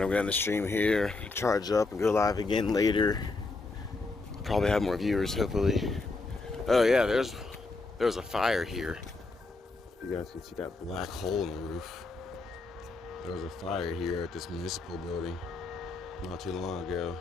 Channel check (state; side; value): quieter; right; 3.5 dB